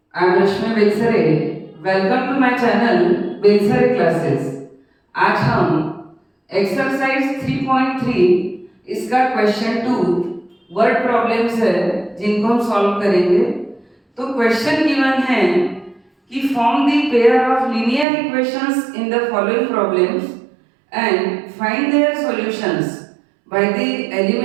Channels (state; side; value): drops out; left; at 18.1 s